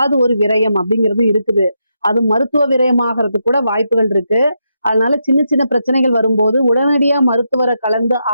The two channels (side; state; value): both; inverted; correlation -0.83